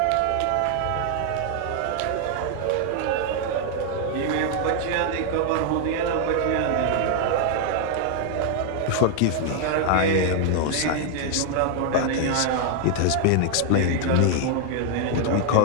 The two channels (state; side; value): different; both; correlation 0.00